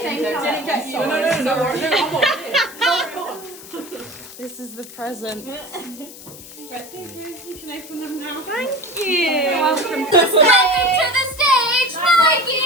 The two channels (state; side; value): noise; left; hiss, 16 dB below the sound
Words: same time? Didn't get you. No. This is the present. Right, thank you. You can open them now. Thank you. Welcome to the stage,